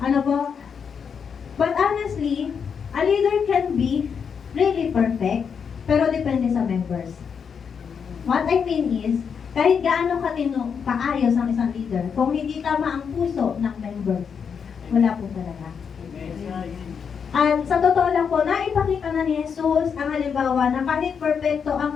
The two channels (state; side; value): quieter; right; 6.7 dB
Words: Ano po? But honestly, a leader can be really perfect, pero depende sa members. What I mean is, kahit gaano kaayos ang isang leader, kung hindi tama ang puso ng members, wala po talaga. At sa totoo lang po, naipakita na ni Jesus ang halimbawa na kahit perfecto